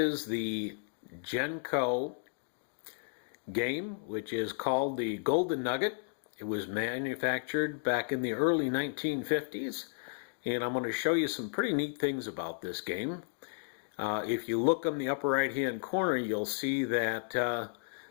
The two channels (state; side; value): silent; right; digital silence